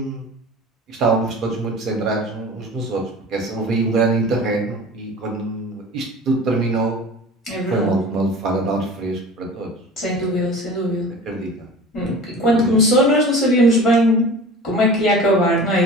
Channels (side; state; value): both; normal; correlation 0.39